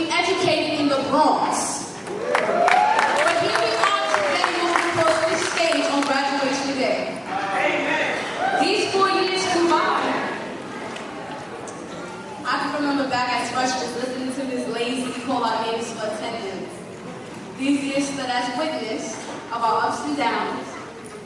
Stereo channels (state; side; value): identical; both; correlation 1.00